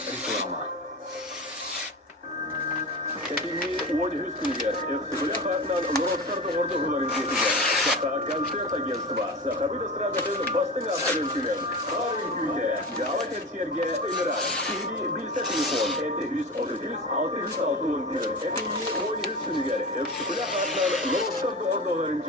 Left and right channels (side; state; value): both; normal; correlation 0.29